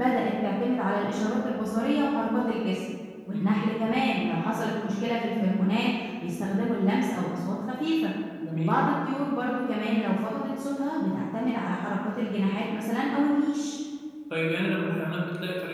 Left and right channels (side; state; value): both; identical; correlation 1.00